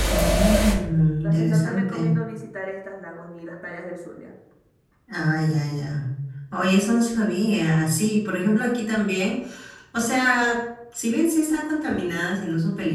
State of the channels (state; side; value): identical; both; correlation 1.00